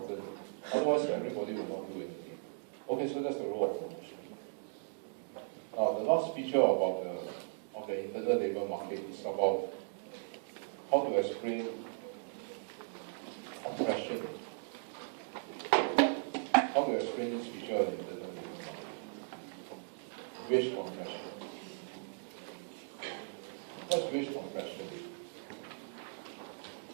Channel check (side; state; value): left; silent; digital silence